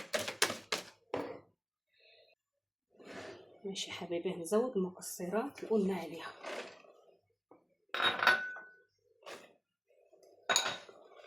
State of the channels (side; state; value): both; identical; correlation 1.00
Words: ماشي يا حبايبي، هنزود المكسرات اللي قلنا عليها.